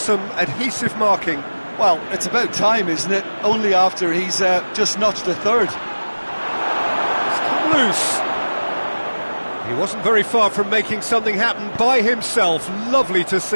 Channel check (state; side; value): inverted; both; correlation -1.00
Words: adhesive marking. Well, it's about time, isn't it? Only after he's just notched a third. It's come loose. He wasn't very far from making something happen by himself. Lovely to